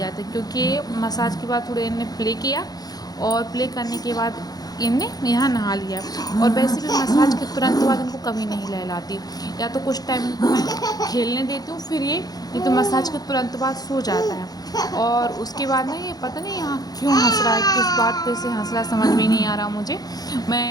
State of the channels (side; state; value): right; late; 0.19 ms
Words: था, क्योंकि मसाज के बाद थोड़े इन्हें प्ले किया और प्ले करने के बाद इनने यहाँ नहा लिया। और वैसे भी मसाज के तुरंत बाद इनको कभी नहीं नहलाती, या तो कुछ टाइम इनको मैं खेलने देती हूँ, फिर ये तो मसाज के तुरंत बाद सो जाता है। और उसके बाद ना ये पता नहीं यहाँ क्यों हंस रहा है, किस बात पे से हंस रहा है समझ में नहीं आ रहा मुझे।